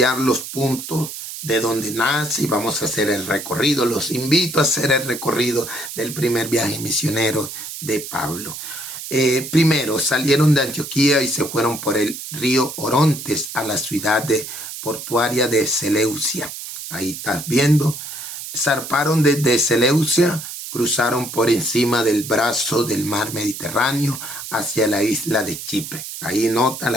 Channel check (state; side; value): noise; right; hiss, 9 dB below the sound